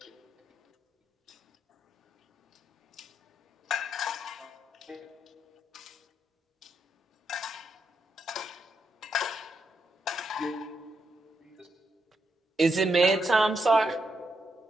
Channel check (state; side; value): normal; both; correlation 0.81